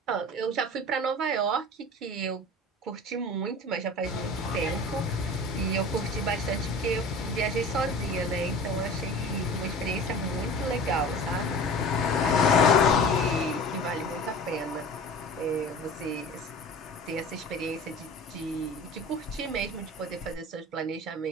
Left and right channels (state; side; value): normal; both; correlation 0.39